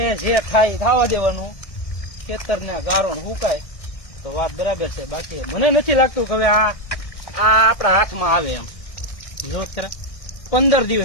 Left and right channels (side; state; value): right; late; 1.6 ms